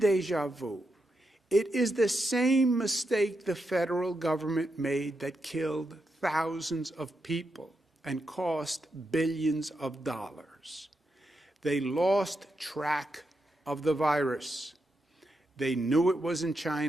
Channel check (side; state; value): both; normal; correlation 0.85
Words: vu. It is the same mistake the federal government made that killed thousands of people and cost billions of dollars. They lost track of the virus. They knew it was in